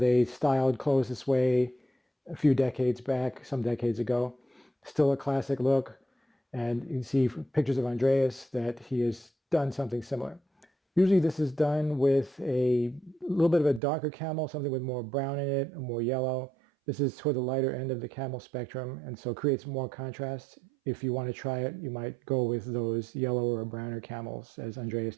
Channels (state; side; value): drops out; left; at 13.8 s